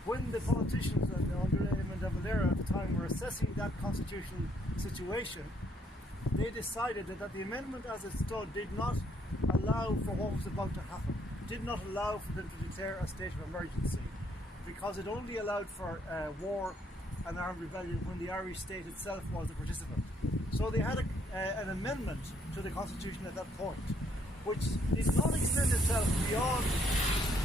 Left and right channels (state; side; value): normal; both; correlation 0.69